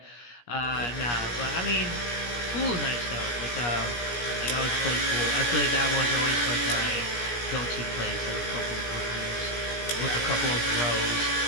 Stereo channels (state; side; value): late; right; 17 ms